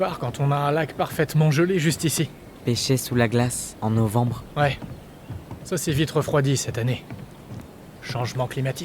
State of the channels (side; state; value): both; identical; correlation 1.00